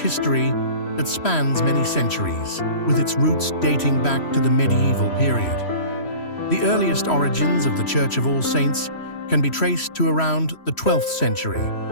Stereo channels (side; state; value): right; late; 3.1 ms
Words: that spans many centuries, with its roots dating back to the medieval period. The earliest origins of the Church of All Saints can be traced to around the 12th century,